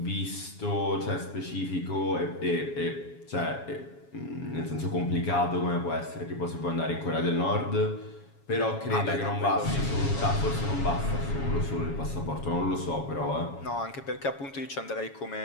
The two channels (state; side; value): late; right; 7.2 ms